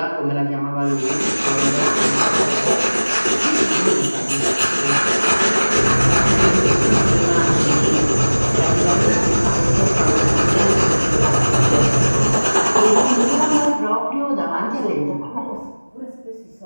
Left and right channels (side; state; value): both; inverted; correlation -1.00